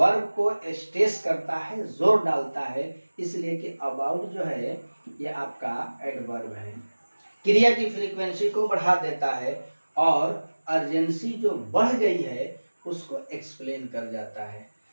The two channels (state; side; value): inverted; both; correlation -1.00